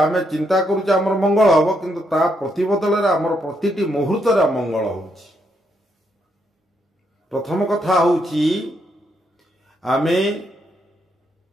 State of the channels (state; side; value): normal; both; correlation 0.77